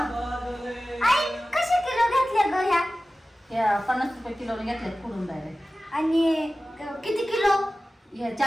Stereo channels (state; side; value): normal; both; correlation 0.96